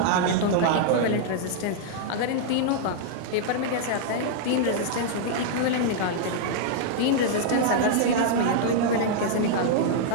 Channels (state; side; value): different; both; correlation -0.01